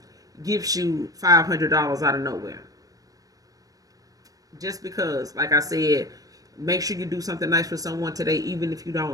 gives you $500 out of nowhere, just because, like I said, make sure you do something nice for someone today, even if you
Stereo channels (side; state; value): left; late; 0.17 ms